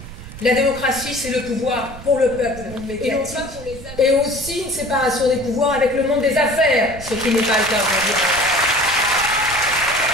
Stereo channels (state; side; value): noise; right; rumble, 14 dB below the sound